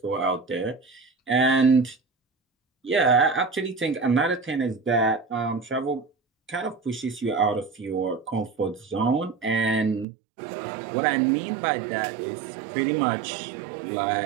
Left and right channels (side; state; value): left; drops out; at 10.1 s